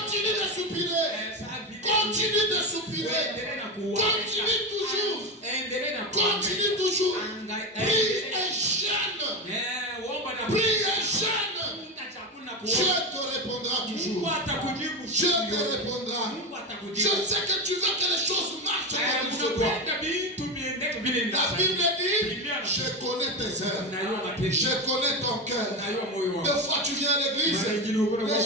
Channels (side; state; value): both; normal; correlation 0.16